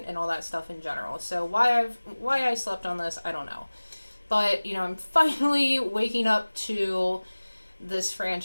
all that stuff in general. So why I slept on this, I don't know. But, I'm finally waking up to this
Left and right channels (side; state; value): both; inverted; correlation -1.00